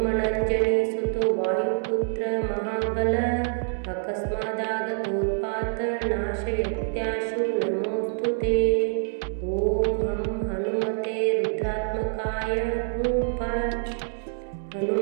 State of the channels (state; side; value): silent; left; digital silence